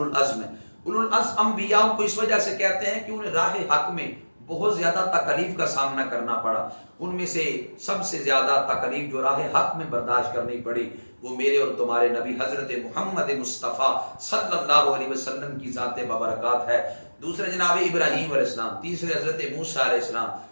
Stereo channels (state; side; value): inverted; both; correlation -1.00